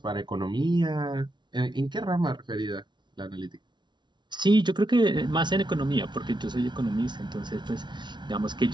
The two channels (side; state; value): left; late; 0.22 ms